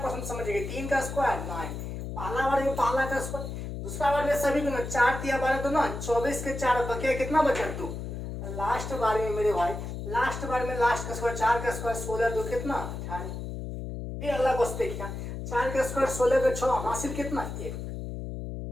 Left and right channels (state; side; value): noise; left; hum, 6 dB below the sound